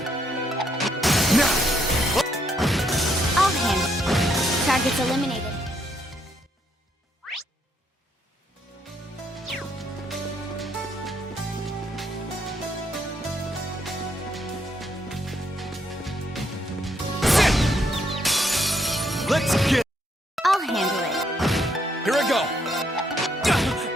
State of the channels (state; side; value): normal; both; correlation 0.74